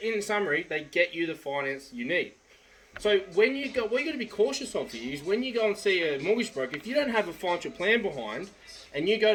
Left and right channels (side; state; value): both; identical; correlation 1.00